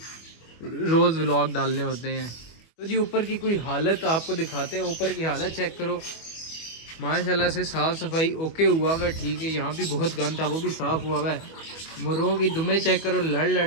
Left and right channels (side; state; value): right; late; 25 ms